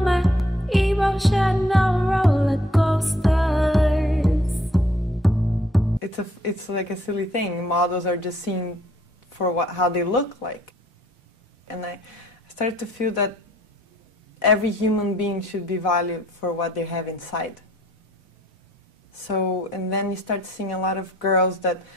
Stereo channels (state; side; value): normal; both; correlation 0.63